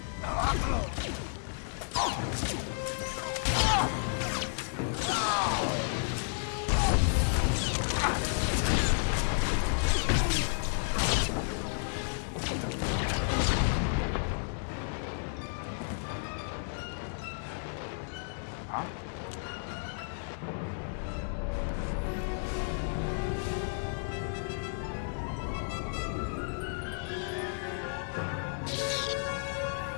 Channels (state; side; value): silent; right; digital silence